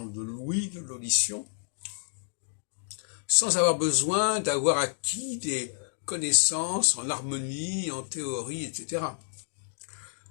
de l'ouïe, de l'audition, sans avoir besoin d'avoir acquis des connaissances en harmonie, en théorie, etc.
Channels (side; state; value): right; silent; digital silence